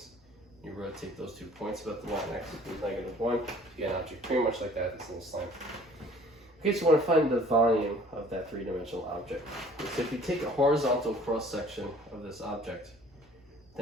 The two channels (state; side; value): normal; both; correlation 0.52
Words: You rotate those 2 points about the line x equals -1. You get an object pretty much like that that's in this line. Okay, so I want to find the volume of that three-dimensional object. So if you take a horizontal cross-section of this object,